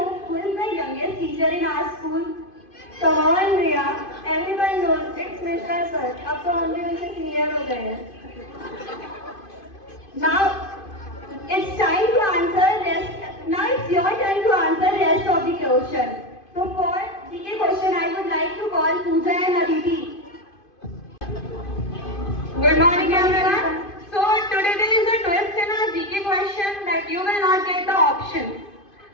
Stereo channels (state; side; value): late; right; 2.5 ms